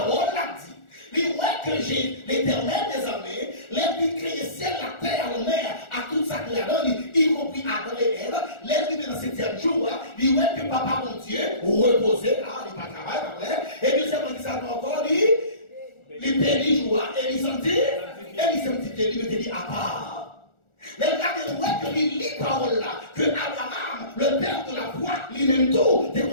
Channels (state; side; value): late; right; 1.4 ms